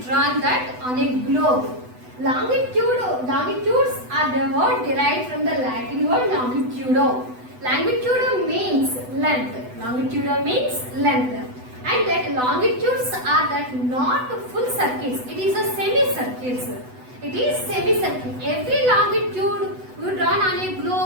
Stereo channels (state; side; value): late; left; 8.0 ms